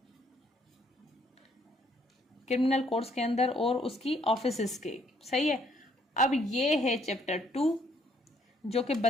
क्रिमिनल कोर्ट्स के अंदर और उसकी ऑफिसेस के। सही है। अब ये है चैप्टर 2 जो कि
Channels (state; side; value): normal; both; correlation 0.67